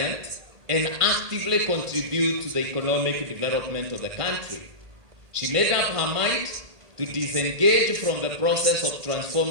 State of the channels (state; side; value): late; left; 1.7 ms